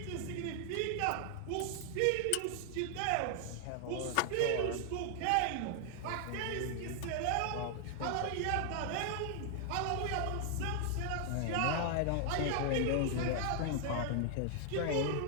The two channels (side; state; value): both; different; correlation 0.00